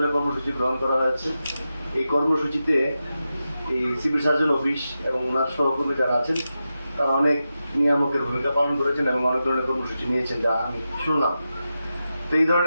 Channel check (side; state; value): both; inverted; correlation -0.91